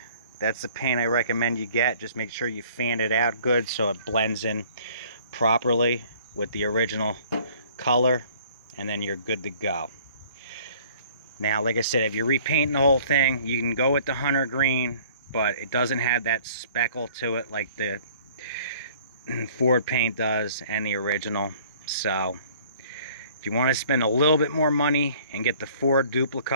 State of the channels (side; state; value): both; inverted; correlation -0.54